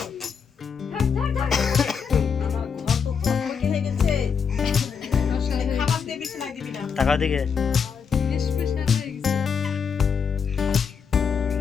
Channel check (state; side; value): quieter; right; 6.5 dB